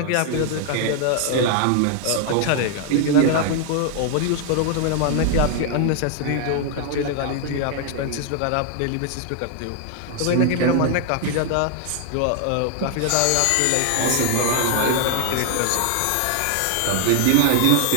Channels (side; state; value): both; different; correlation 0.00